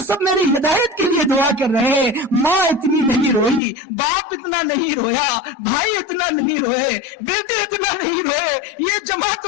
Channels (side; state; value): right; drops out; at 3.6 s